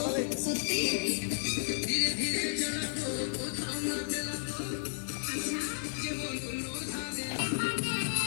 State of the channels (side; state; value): right; silent; 56 dB below the other